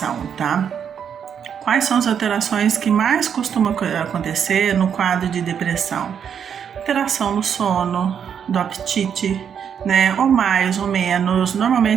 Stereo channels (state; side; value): quieter; left; 7.9 dB